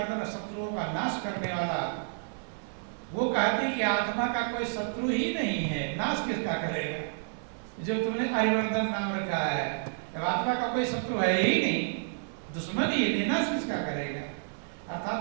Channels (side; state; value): left; silent; digital silence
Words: शत्रुओं का नाश करने वाला। वो कहती कि आत्मा का कोई शत्रु ही नहीं है, नाश किसका करेगा? जो तुमने अरिमर्दन नाम रखा है, जब आत्मा का कोई शत्रु है ही नहीं, दुश्मन ही नहीं, नाश किसका करेगा?